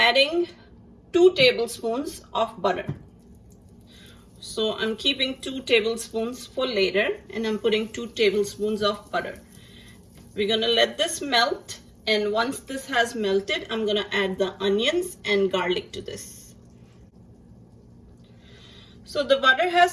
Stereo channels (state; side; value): identical; both; correlation 1.00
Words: 2 tablespoons of butter. So I'm keeping 2 tablespoons for later, and I'm putting 2 tablespoons of butter. We're gonna let this melt, and once this has melted, I'm gonna add the onions and garlic to this. So the butter